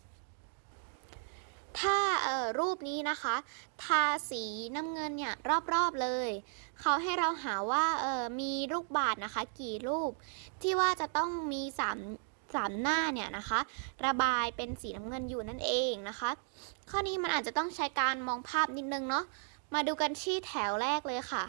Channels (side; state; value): left; silent; 54 dB below the other